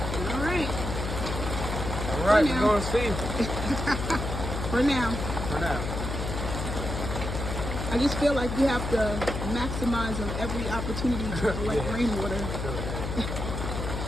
Alright. Alright, we're going to see. For now. For now. I just feel like we have to maximize on every opportunity to collect rainwater.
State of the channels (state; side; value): noise; left; hum, 4 dB below the sound